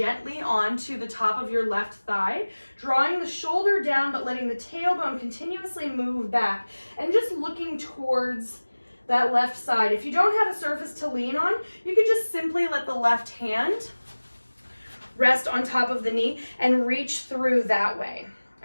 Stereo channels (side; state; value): both; inverted; correlation -1.00